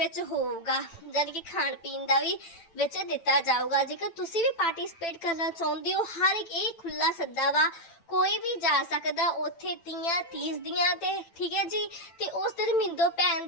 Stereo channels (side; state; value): right; late; 9.0 ms